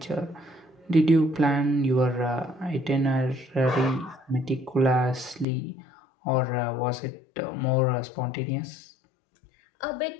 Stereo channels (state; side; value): drops out; right; at 5.5 s